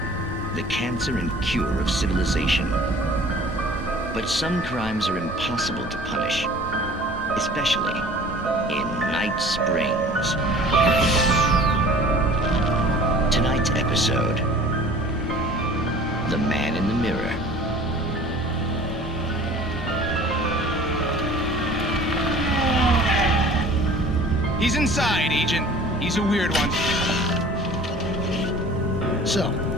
The cancer and cure of civilization. But some crimes are impossible to punish, especially in Night Springs. Tonight's episode, The Man in the Mirror. He's inside, Agent. He's a weird one. So,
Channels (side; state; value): both; normal; correlation 0.47